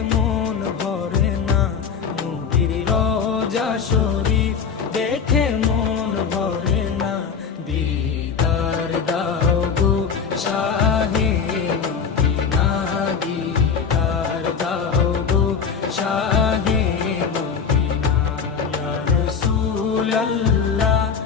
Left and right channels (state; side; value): quieter; right; 6.4 dB